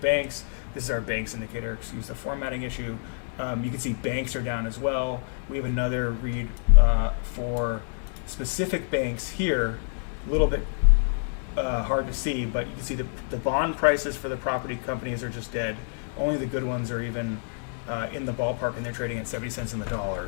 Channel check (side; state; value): right; silent; digital silence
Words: This is our banks indicator, excuse the formatting issue. You can see banks are down as well. We have another read for specific banks here, a little bit hard to see, but you can see the bond prices for the property companies are just dead. Only the good ones are even in the ballpark, and they're trading at 70 cents in the